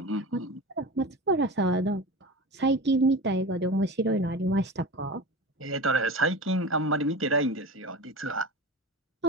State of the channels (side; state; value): both; normal; correlation 0.30